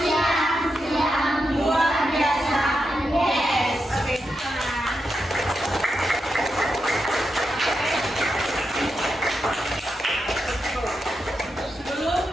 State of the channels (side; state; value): both; normal; correlation 0.87